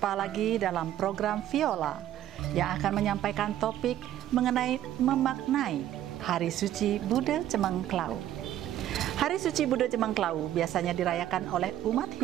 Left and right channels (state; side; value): quieter; left; 12.3 dB